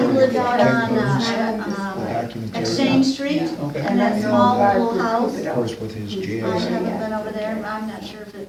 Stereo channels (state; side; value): identical; both; correlation 1.00